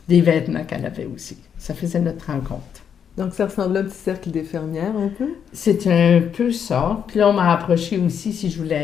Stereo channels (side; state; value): right; quieter; 7.8 dB